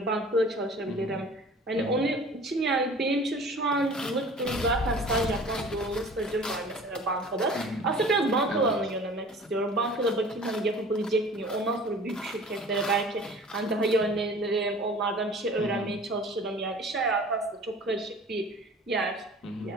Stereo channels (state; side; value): normal; both; correlation 0.45